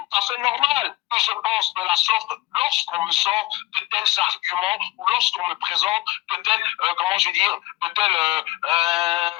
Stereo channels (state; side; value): quieter; right; 18.6 dB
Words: à fait normal que je pense de la sorte lorsqu'on me sort de tels arguments ou lorsqu'on me présente de tels, comment je veux dire, de tels